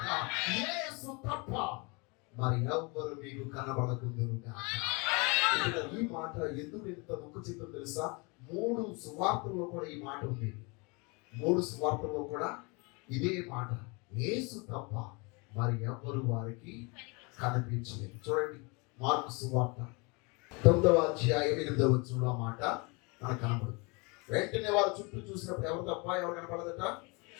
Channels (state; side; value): quieter; right; 29.5 dB